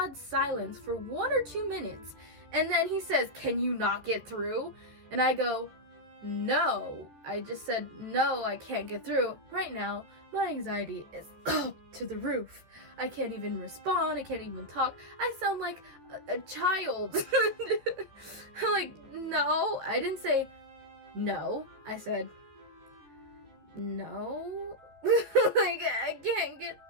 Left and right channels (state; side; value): late; left; 13 ms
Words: silence for 1 or 2 minutes, and then he says, "Can you not get through?" And I go, no. I just said, no, I can't get through. Right now, my anxiety is up to the roof. I can't even respond. I can't even talk. I sound like a child. I'm like, no. I didn't say no. I said, no. Like, I can't get